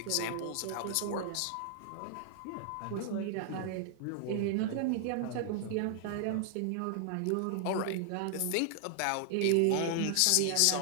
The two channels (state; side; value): different; both; correlation 0.00